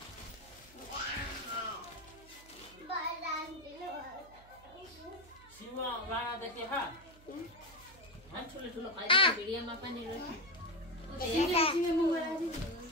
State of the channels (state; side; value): noise; right; hum, 23 dB below the sound